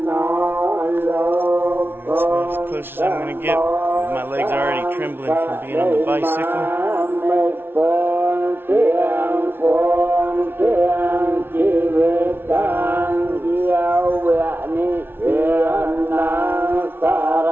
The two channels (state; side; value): late; left; 0.11 ms